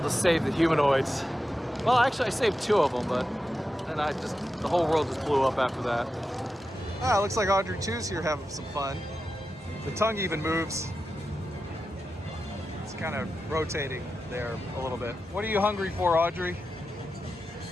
to save the humanoids. Well, actually I saved two of them, but then the whole world just blew up after that. Ah, looks like Audrey 2's here having some fun. The tongue even moves. It's kind of rotating there a little bit. What are you hungry for, Audrey?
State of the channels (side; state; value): both; normal; correlation 0.90